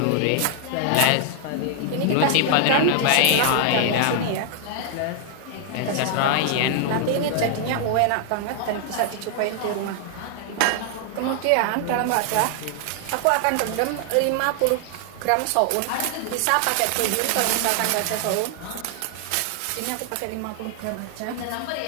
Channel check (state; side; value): different; both; correlation 0.00